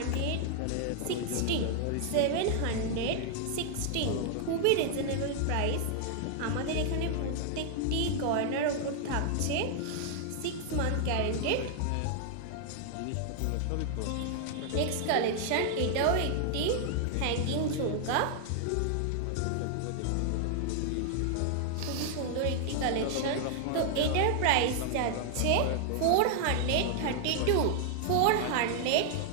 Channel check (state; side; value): different; both; correlation 0.00